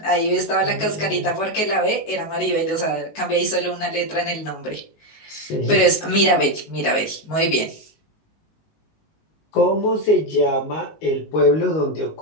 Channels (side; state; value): right; late; 19 ms